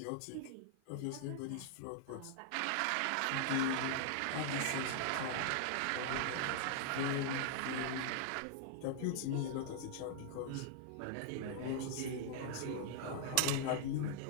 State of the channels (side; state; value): both; different; correlation -0.01